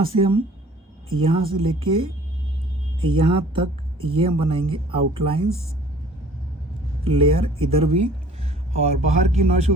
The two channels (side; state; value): both; normal; correlation 0.51